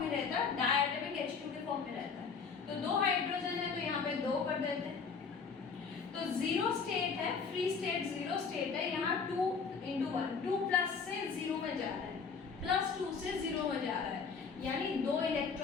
में रहता है, डायटोमिक H2 के फॉर्म में रहता है। तो 2 हाइड्रोजन है तो यहाँ पे 2 कर देते हैं। तो 0 स्टेट है, फ्री स्टेट 0 स्टेट है, यहाँ 2 × 1, 2+ से 0 में जा रहा है, +2 से 0 में जा रहा है, यानी 2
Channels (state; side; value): quieter; right; 5.5 dB